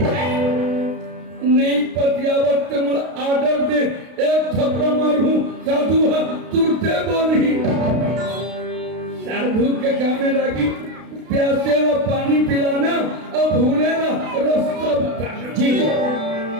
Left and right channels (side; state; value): left; late; 32 ms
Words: नहीं पतियावत मुझे आर्डर दे एक थप्पड़ मारूं साधु तुरते बोली साधु के गाने लगी प्यासे ला पानी पिलाना और भूले ला रास्ता बताना जी